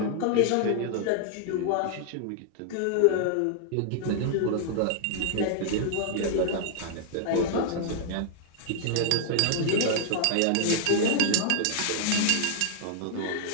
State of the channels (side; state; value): both; different; correlation 0.00